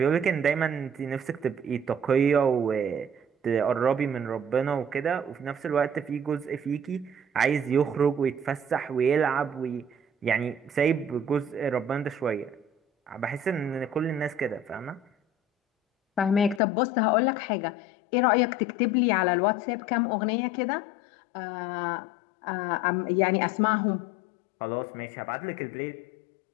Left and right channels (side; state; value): right; drops out; at 16.6 s